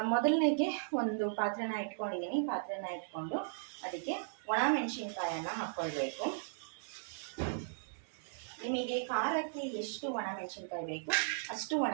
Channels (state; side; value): silent; left; digital silence